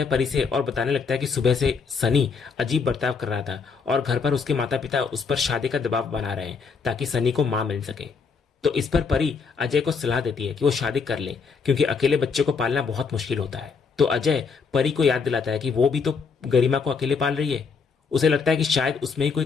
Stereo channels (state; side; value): quieter; right; 5.3 dB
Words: परी से और बताने लगता है कि सुबह से सनी अजीब बर्ताव कर रहा था और घर पर उसके माता पिता उस पर शादी का दबाव बना रहे हैं ताकि सनी को मां मिल सके। तो इस पर परी अजय को सलाह देती है कि वो शादी कर ले, क्योंकि अकेले बच्चे को पालना बहुत मुश्किल होता है। तो अजय परी को याद दिलाता है कि वो भी तो गरिमा को अकेले पाल रही है। उसे लगता है कि शायद उसमें ही कोई